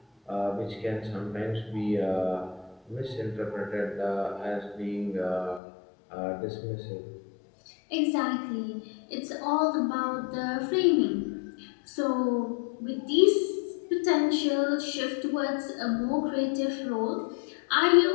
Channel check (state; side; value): drops out; right; at 5.6 s